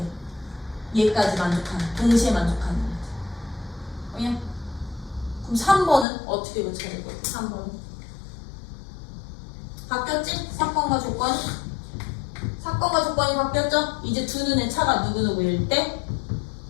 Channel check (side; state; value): right; drops out; at 6.1 s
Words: 얘까지 만족하는, 동시에 만족하는. 그냥 그럼 3번은 어떻게 고쳐야 될 거야? 3번은 바뀌었지? 사건과 조건이? 사건과 조건이 바뀌었죠? 이제 두 눈의 차가 누구누구일 때